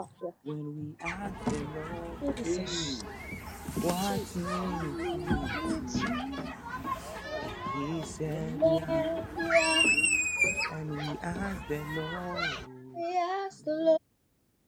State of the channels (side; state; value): both; identical; correlation 1.00